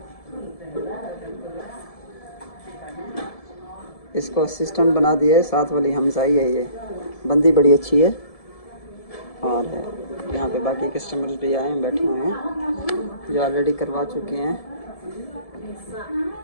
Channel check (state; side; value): late; right; 1.7 ms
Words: इसको असिस्टेंट बना दिया है, साथ वाली हमसाई है, ये बंदी बड़ी अच्छी है। और यहाँ पे बाकी कस्टमर्स भी आए हैं, बैठे हुए हैं जो ऑलरेडी करवा चुके हैं।